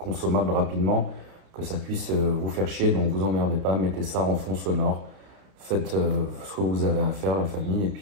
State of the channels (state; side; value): late; left; 31 ms